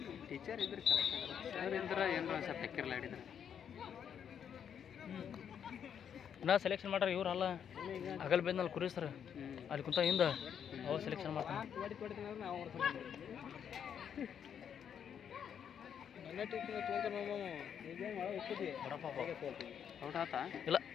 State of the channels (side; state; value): right; quieter; 8.3 dB